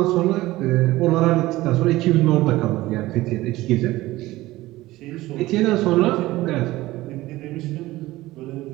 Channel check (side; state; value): left; quieter; 17.7 dB